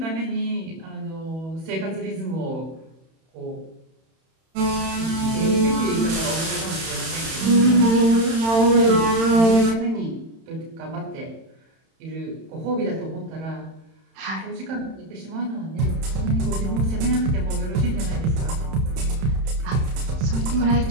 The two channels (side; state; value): left; late; 31 ms